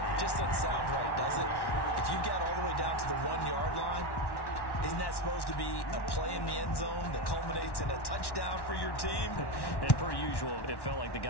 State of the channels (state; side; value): late; right; 1.1 ms